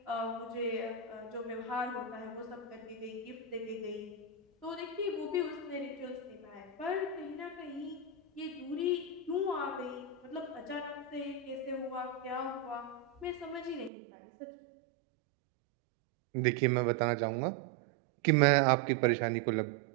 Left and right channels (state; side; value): drops out; left; at 13.9 s